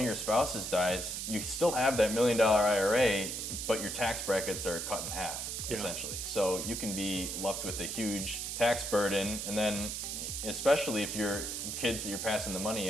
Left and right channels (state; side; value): noise; right; hiss, 4 dB below the sound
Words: your spouses dies, you still have that $1 million IRA, but your tax brackets are cut in half, essentially. So you can be left with a huge tax burden, and then especially if your kids that you're passing the